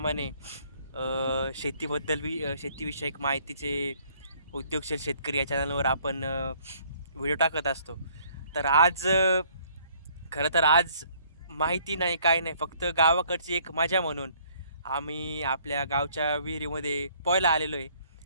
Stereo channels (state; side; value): inverted; both; correlation -0.62